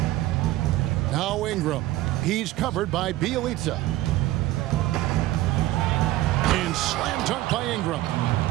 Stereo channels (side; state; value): left; quieter; 16.3 dB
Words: Now Ingram. He's covered by Bielitsa. And slam dunk by Ingram.